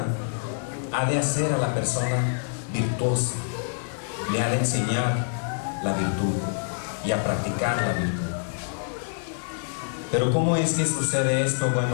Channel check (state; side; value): silent; right; digital silence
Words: ha de hacer a la persona virtuosa, le ha de enseñar la virtud y a practicar la virtud. Pero ¿cómo es que sucede esto?